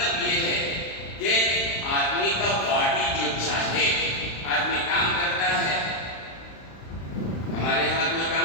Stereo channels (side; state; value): right; late; 36 ms